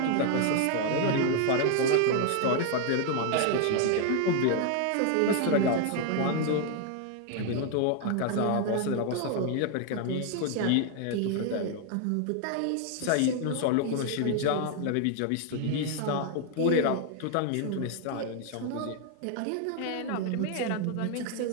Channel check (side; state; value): both; different; correlation 0.00